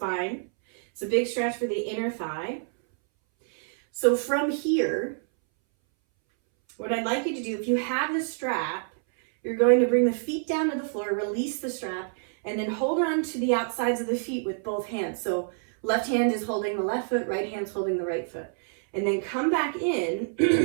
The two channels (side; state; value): left; silent; 60 dB below the other